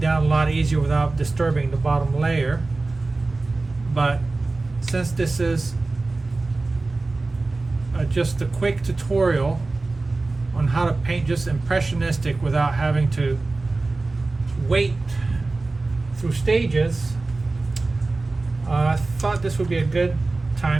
a lot easier without disturbing the bottom layer. But since this is just a quick tutorial on how to paint just impressionistic without having to wait through stages, I thought this would be a good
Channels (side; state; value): left; quieter; 3.4 dB